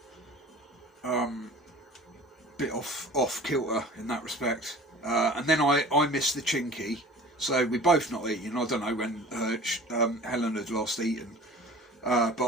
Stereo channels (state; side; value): normal; both; correlation 0.43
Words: bit off kilter in that respect. And then I missed the chinky, so we both not eating. I don't know when Helen had last eaten, but